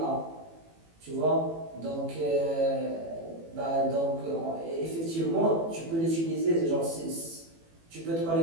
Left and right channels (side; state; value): left; late; 18 ms